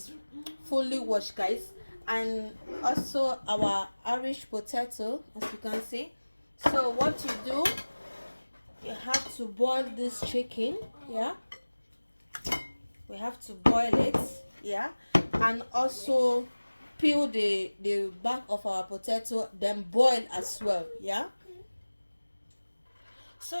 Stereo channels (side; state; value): both; inverted; correlation -1.00